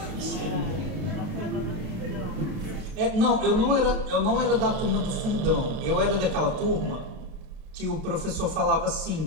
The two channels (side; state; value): left; late; 32 ms